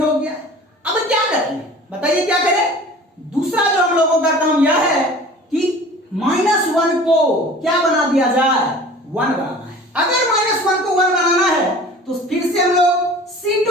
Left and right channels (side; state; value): both; normal; correlation 0.43